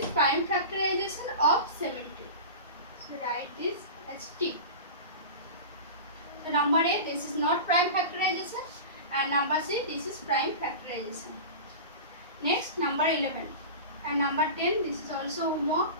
prime factorization of 70. So write this as T. So number A, this is not prime factorization, and number C, this is prime factorization. Next, number 11 and number 10, this is also homework.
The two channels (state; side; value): inverted; both; correlation -0.30